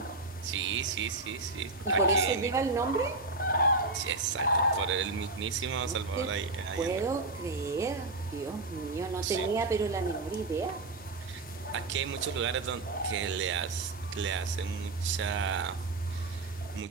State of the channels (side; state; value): left; quieter; 3.3 dB